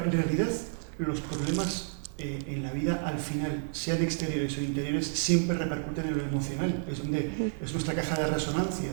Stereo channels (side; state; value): left; silent; 57 dB below the other